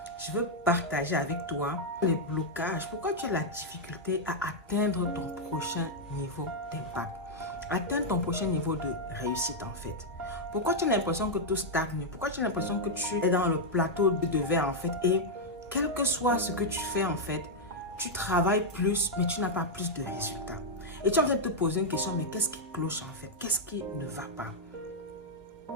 je veux partager avec toi les blocages. Pourquoi tu as la difficulté à atteindre ton prochain niveau d'impact? Atteindre ton prochain niveau de réussite en fait. Pourquoi tu as l'impression que tout stagne? Pourquoi tu as l'impression que tu es dans le plateau de verre en fait? Et quel que soit ce que tu fais en fait, tu travailles plus mais tu n'as pas plus de résultats. Et tu es en train de te poser une question, mais qu'est-ce qui cloche en fait? Qu'est-ce qui ne va pas?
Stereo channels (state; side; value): normal; both; correlation -0.03